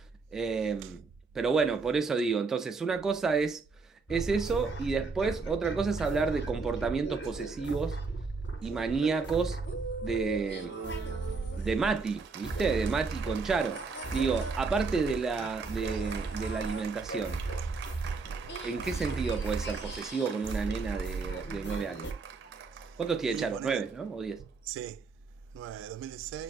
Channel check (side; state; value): left; quieter; 4.4 dB